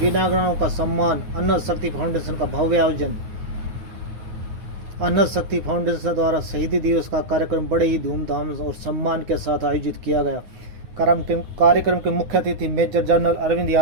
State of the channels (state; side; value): late; left; 9.5 ms